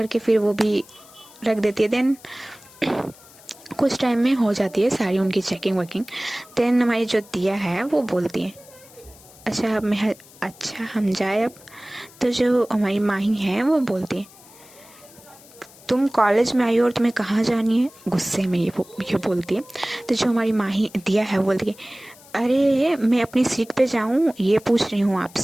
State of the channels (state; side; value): noise; left; hiss, 23 dB below the sound